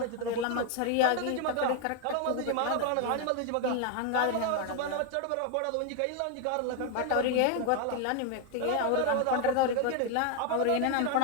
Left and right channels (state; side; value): different; both; correlation 0.00